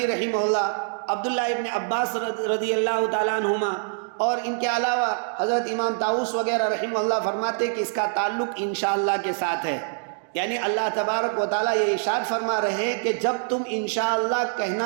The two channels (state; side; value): silent; left; digital silence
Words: رحمہ اللہ، عبداللہ ابن عباس رضی اللہ تعالیٰ عنہما اور ان کے علاوہ حضرت امام طاؤس وغیرہ رحمہ اللہ فرماتے کہ اس کا تعلق انشاءاللہ کے ساتھ ہے. یعنی اللہ تبارک و تعالیٰ یہ ارشاد فرما رہے ہیں کہ جب تم انشاءاللہ